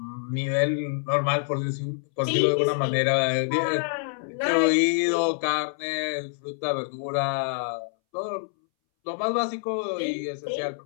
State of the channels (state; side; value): silent; right; 61 dB below the other